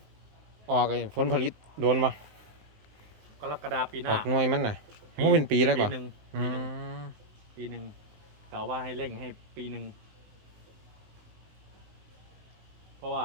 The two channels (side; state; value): left; late; 19 ms